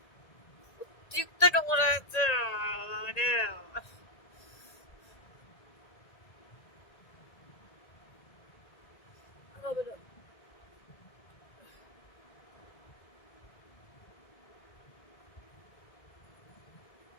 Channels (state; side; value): late; right; 1.9 ms